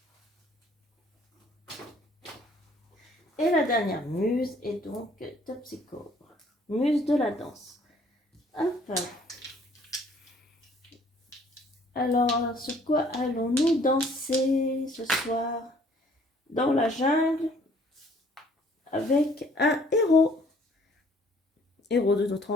Et la dernière muse est donc Topsicore, muse de la danse. Hop. Alors, sur quoi allons-nous danser ce soir? Dans la jungle, avec un héros. Héros de notre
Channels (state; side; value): normal; both; correlation 0.59